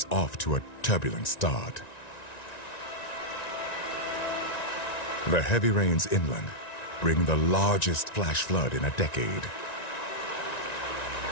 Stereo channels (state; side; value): late; right; 1.9 ms